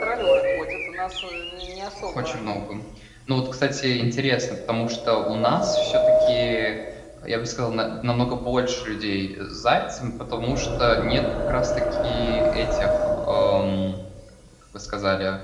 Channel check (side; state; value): both; identical; correlation 1.00